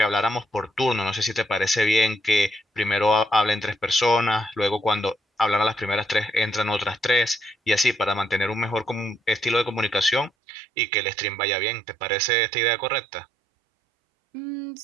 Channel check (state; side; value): drops out; left; at 10.3 s